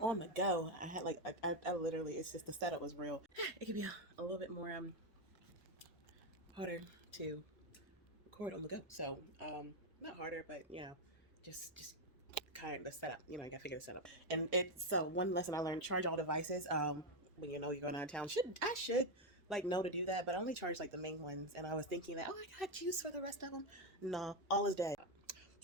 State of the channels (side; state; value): both; normal; correlation 0.06